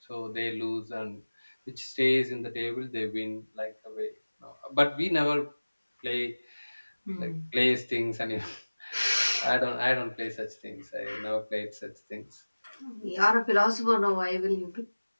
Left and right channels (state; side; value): inverted; both; correlation -1.00